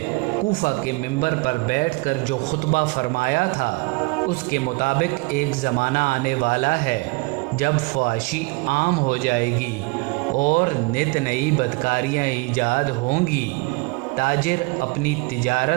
کوفہ کے ممبر پر بیٹھ کر جو خطبہ فرمایا تھا، اس کے مطابق ایک زمانہ آنے والا ہے جب فحاشی عام ہو جائے گی اور نت نئی بدکاریاں ایجاد ہوں گی۔ تاجر اپنی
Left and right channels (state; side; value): quieter; left; 26.4 dB